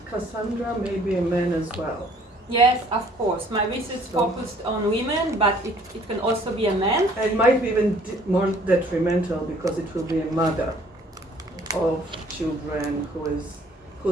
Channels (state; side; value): normal; both; correlation 0.58